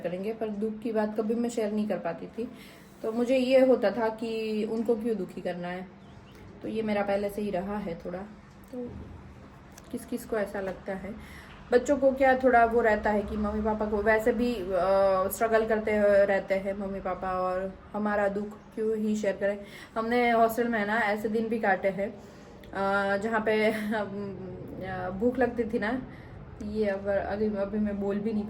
पर दुख की बात कभी मैं शेयर नहीं कर पाती थी। तो मुझे ये होता था कि उनको क्यों दुखी करना है, तो ये मेरा पहले से ही रहा है थोड़ा। तो किस किस को ऐसा लगता है, बच्चों को क्या थोड़ा वो रहता है कि मम्मी पापा को वैसे भी स्ट्रगल करते रहते हैं मम्मी पापा, और हमारा दुख क्यों ही शेयर करें। हमने हॉस्टल में ना ऐसे दिन भी काटे हैं जहाँ पे भूख लगती थी ना, ये अभी मैं बोल भी नहीं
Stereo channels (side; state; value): both; identical; correlation 1.00